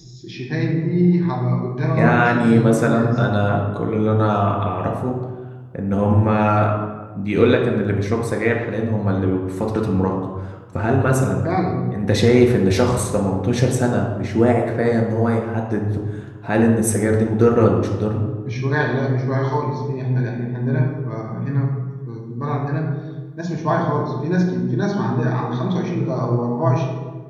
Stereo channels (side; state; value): both; identical; correlation 1.00